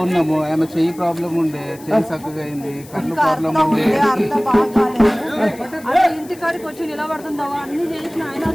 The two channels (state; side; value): noise; left; hiss, 21 dB below the sound